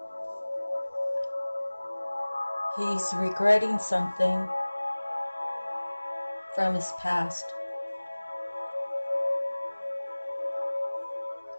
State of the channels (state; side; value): inverted; both; correlation -1.00